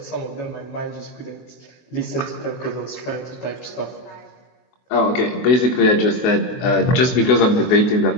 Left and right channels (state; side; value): late; right; 24 ms